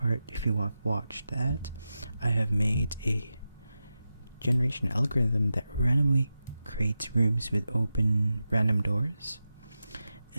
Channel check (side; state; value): both; inverted; correlation -0.92